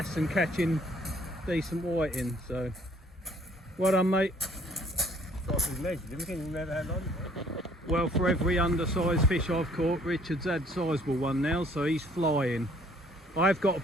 and catching decent whiting, so well done, mate. Well, for every undersized fish I've caught, Richard's had a sizable one now, so he's flying. I've got a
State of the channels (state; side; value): normal; both; correlation 0.60